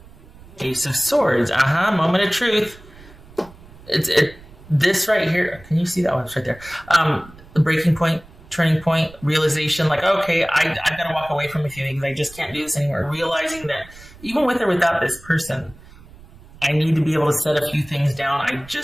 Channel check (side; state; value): right; noise; rumble, 21 dB below the sound